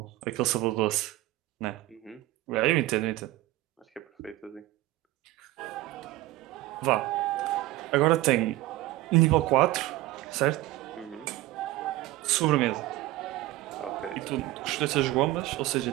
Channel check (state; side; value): quieter; left; 16.8 dB